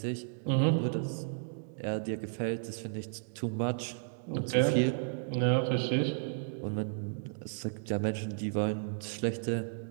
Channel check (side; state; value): left; silent; digital silence